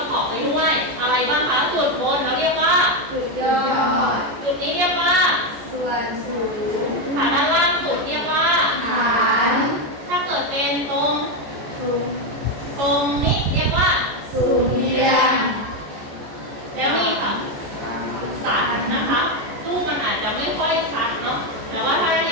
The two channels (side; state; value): left; late; 14 ms